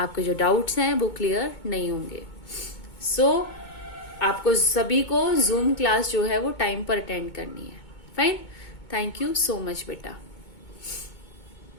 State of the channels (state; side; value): late; right; 2.2 ms